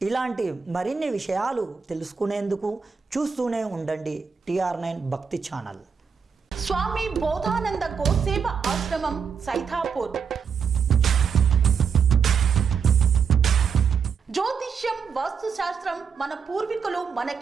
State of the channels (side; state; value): left; quieter; 6.3 dB